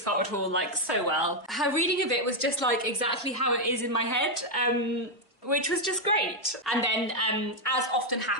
Hartwood Hall like so well. Her reading of it was just like exactly how it is in my head. Which was just great. And then, as often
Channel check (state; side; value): normal; both; correlation 0.02